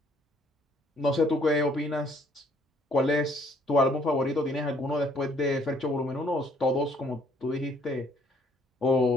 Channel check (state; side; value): normal; both; correlation 0.63